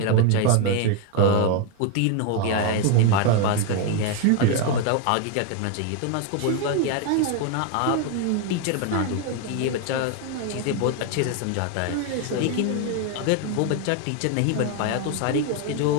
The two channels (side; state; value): both; different; correlation 0.01